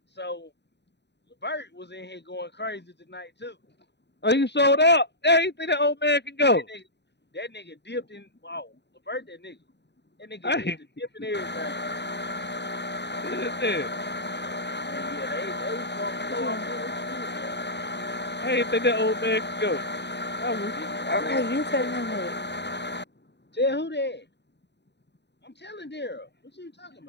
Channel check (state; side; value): late; right; 0.50 ms